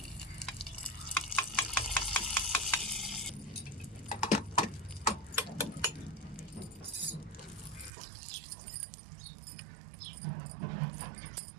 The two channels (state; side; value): drops out; left; at 7.9 s